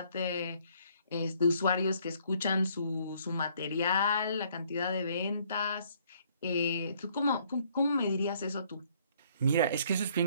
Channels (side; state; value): both; inverted; correlation -0.64